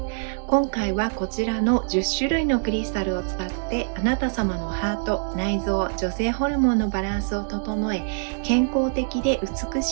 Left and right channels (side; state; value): left; silent; digital silence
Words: 今回はこちらの10種類のクリスタルを使ってあなた様のハート、内臓、女性ホルモンのバランスを整え、健康的で美